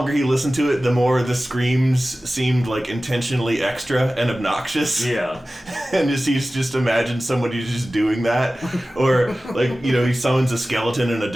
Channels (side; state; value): both; normal; correlation 0.96